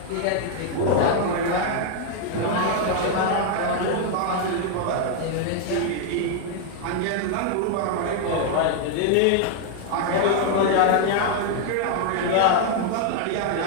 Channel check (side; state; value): both; different; correlation 0.00